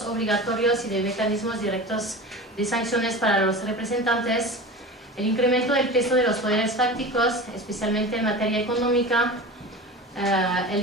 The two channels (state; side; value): normal; both; correlation 0.32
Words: obligatorios y de mecanismos directos de sanciones para los representantes, el incremento del peso de los poderes fácticos, especialmente en materia económica,